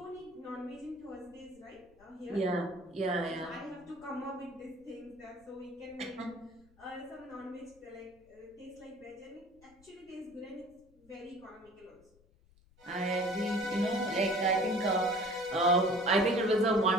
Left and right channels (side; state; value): left; noise; rumble, 29 dB below the sound